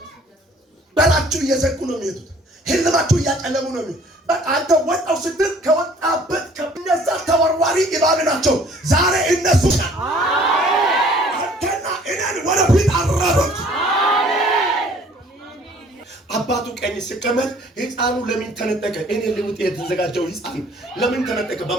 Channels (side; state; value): both; normal; correlation 0.55